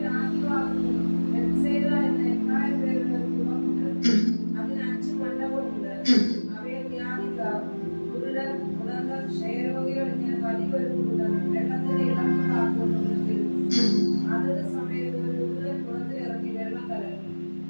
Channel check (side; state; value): both; inverted; correlation -1.00